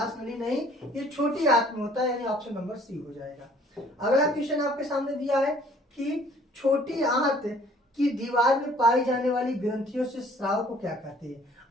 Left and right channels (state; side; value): normal; both; correlation 0.56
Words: नली नहीं, ये छोटी आंत में होता है, यानी ऑप्शन नंबर सी हो जाएगा। अगला क्वेश्चन आपके सामने दिया है कि छोटी आंत की दीवार में पाई जाने वाली ग्रंथियों से स्राव को क्या कहते हैं?